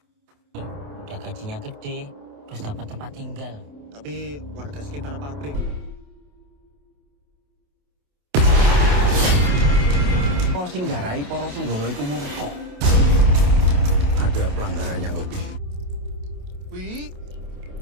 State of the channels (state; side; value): late; left; 28 ms